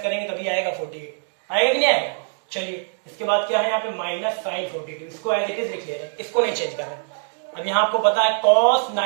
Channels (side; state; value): left; silent; 63 dB below the other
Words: करेंगे तभी आएगा 48, आएगा कि नहीं आएगा। चलिए, इसके बाद क्या है यहाँ पे माइनस साइन 42, इसको एज इट इज लिख ले रहे हैं, इसको नहीं चेंज कर रहे हैं। अब यहाँ आपको पता है cos